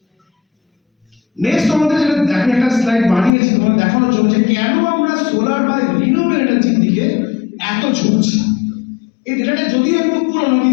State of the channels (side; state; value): right; drops out; at 3.3 s